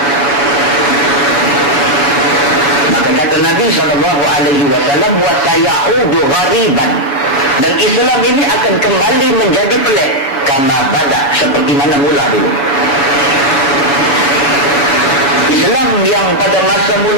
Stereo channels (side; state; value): right; late; 6.6 ms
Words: Maka kata Nabi SAW, wa sayaudu ghariban, dan Islam ini akan kembali menjadi pelik kama bada, seperti mana mula dulu. Islam yang pada masa